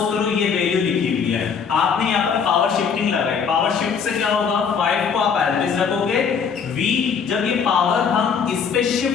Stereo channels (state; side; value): quieter; right; 6.4 dB